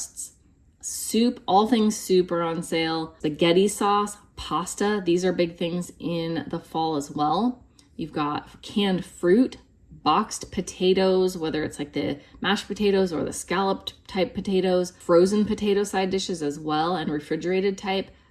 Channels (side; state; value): both; identical; correlation 1.00